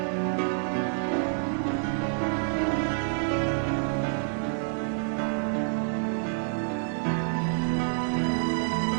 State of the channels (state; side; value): silent; left; digital silence